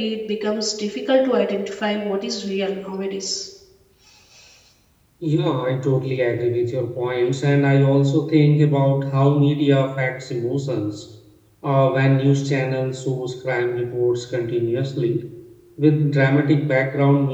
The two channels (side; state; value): both; identical; correlation 1.00